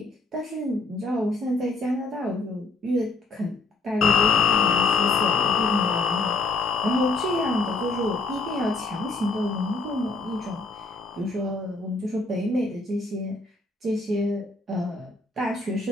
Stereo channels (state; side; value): quieter; right; 3.4 dB